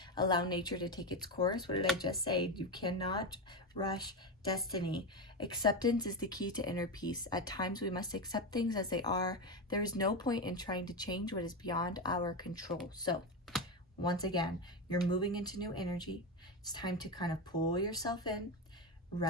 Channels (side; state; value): both; normal; correlation 0.14